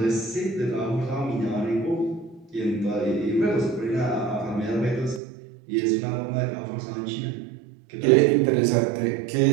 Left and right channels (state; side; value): drops out; left; at 5.2 s